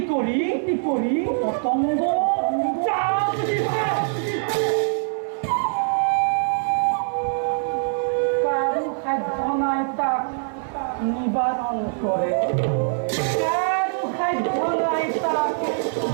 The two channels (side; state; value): left; silent; 57 dB below the other